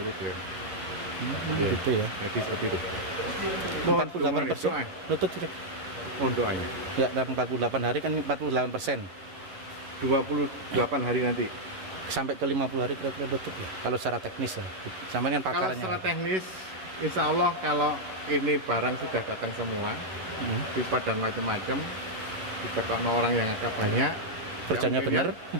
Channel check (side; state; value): left; late; 11 ms